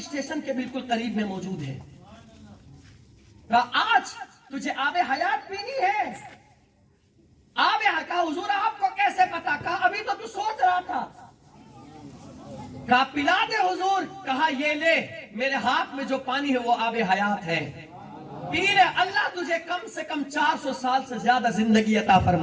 کے بالکل قریب میں موجود ہے. کہا آج تجھے آب حیات پینی ہے؟ آب حیات. کہا حضور آپ کو کیسے پتا؟ کہا ابھی تو سوچ رہا تھا. کہا پلا دے حضور. کہا یہ لے، میرے ہاتھ میں جو پانی ہے وہ آب حیات ہے، پی لے. اللہ تجھے کم سے کم 400 سال سے زیادہ زندگی عطا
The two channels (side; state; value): both; identical; correlation 1.00